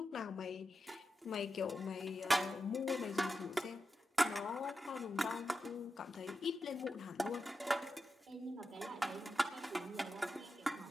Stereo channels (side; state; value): both; normal; correlation 0.90